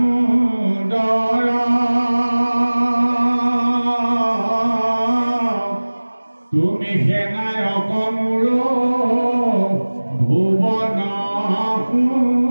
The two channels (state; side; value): inverted; both; correlation -1.00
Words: তুমি সেনায়ক মোৰ ভুৱন